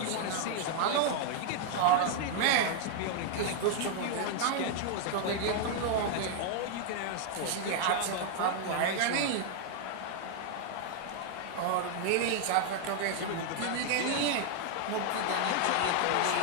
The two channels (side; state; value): both; different; correlation 0.00